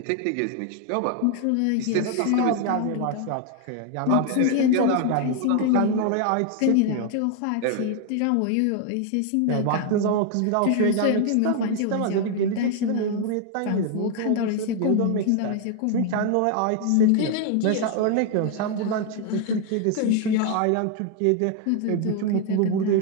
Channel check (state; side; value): different; both; correlation 0.00